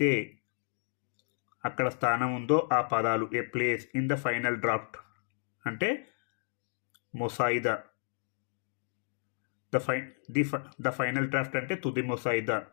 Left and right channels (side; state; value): right; silent; digital silence